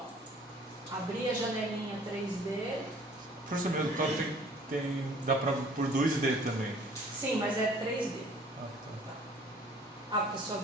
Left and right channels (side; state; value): both; normal; correlation 0.54